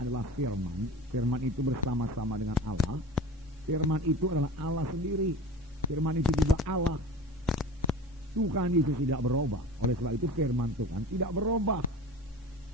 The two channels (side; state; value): both; normal; correlation 0.35